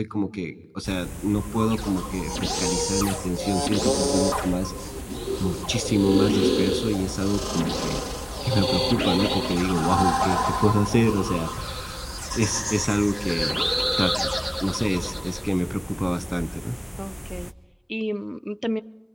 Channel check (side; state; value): both; identical; correlation 1.00